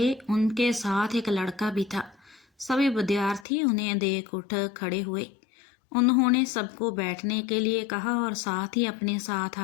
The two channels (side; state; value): right; drops out; at 3.5 s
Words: उनके साथ एक लड़का भी था। सभी विद्यार्थी उन्हें देख उठ खड़े हुए। उन्होंने सबको बैठने के लिए कहा और साथ ही अपने साथ